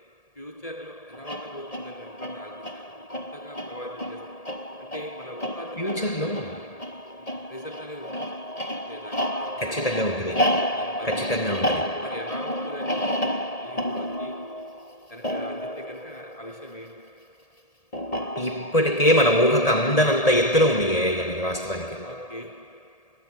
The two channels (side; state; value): right; late; 1.8 ms